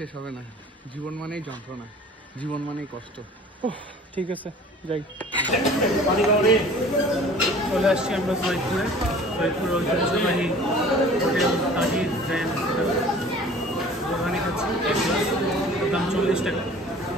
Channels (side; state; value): both; normal; correlation 0.47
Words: হবে না। জীবন মানেই যন্ত্রণা, জীবন মানেই কষ্ট। ঠিক আছে, যাই। চলে আসছি আমরা সৈয়দপুরে। সৈয়দপুরের ঐতিহ্যবাহী হোটেল তাজির গ্র্যান্ড হোটেল। বোরহানি খাচ্ছি, দাম 40 টাকা।